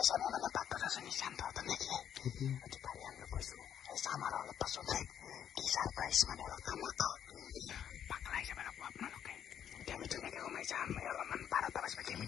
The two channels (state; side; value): quieter; right; 9.3 dB